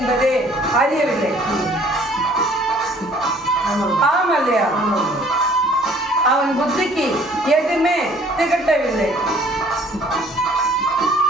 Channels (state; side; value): normal; both; correlation 0.56